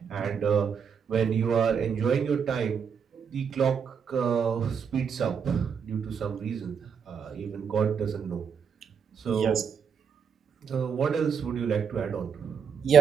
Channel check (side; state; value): left; quieter; 6.8 dB